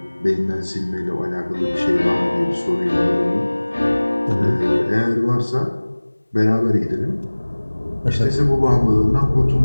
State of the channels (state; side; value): inverted; both; correlation -1.00